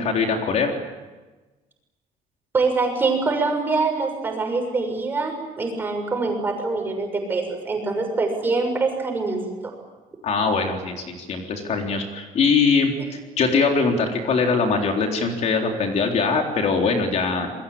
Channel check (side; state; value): both; normal; correlation 0.47